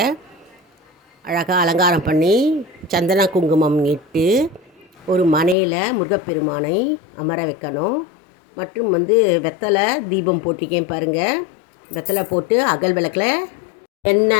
அழகாக அலங்காரம் பண்ணி சந்தன குங்குமம் இட்டு ஒரு மனையில் முருகப்பெருமானை அமர வைக்கணும். மற்றும் வெத்தலை தீபம் போட்டிருக்கேன் பாருங்கள். வெத்தலை போட்டு அகல் விளக்கில்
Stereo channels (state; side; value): drops out; right; at 5.6 s